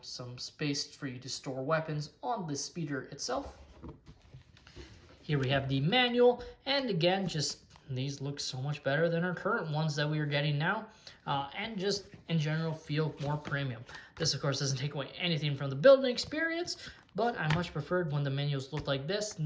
some space for you to store weapons on the speeder itself. Here we have the manual, and again, just these look so much better than our current ones that we are getting now, and just in general feel more premium. This, of course, doesn't take away anything from the building experience, but I much preferred when the menus looked like this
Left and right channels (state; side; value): identical; both; correlation 1.00